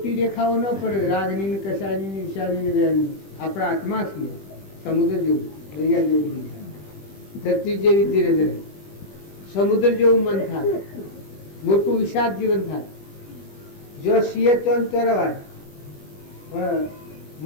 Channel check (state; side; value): late; right; 20 ms